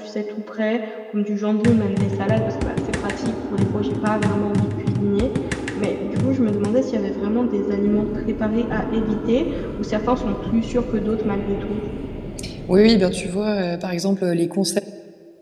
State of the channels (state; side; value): identical; both; correlation 1.00